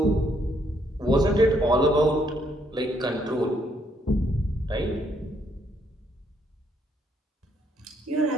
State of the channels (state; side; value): normal; both; correlation 0.72